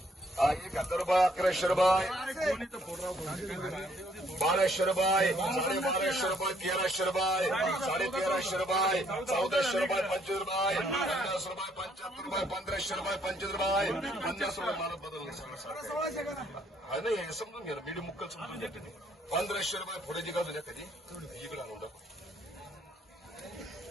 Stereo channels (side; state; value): both; normal; correlation 0.67